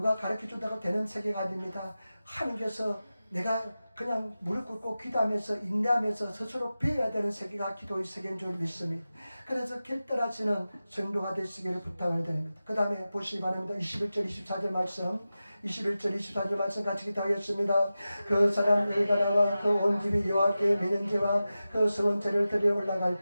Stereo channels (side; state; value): both; inverted; correlation -0.94